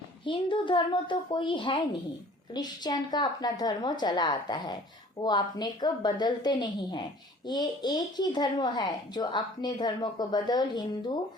हिंदू धर्म तो कोई है नहीं, क्रिश्चियन का अपना धर्म चला आता है, वो अपने को बदलते नहीं है। ये एक ही धर्म है जो अपने धर्म को बदल हिंदू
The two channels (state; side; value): normal; both; correlation 0.50